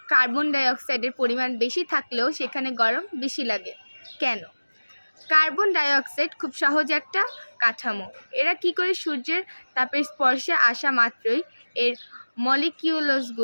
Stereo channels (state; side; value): inverted; both; correlation -1.00